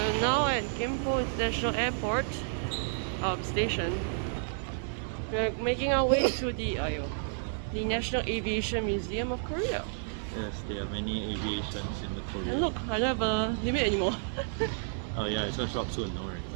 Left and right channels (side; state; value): left; silent; 57 dB below the other